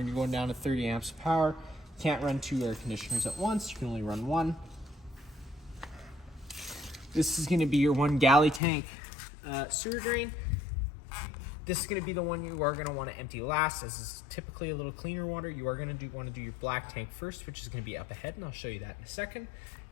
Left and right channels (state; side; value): drops out; right; at 8.6 s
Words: you're going down to 30 amps of power, you can't run 2 air conditioners at once. You can only run 1. This is going to be your 1 galley tank sewer drain. This is going to be the one you are going to want to empty last, as is typically a little cleaner water. You are going to want to do your black tank first, which is going to be up ahead, and I'll show you that in a second.